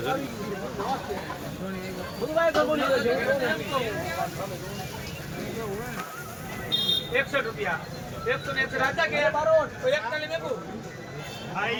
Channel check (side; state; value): both; identical; correlation 1.00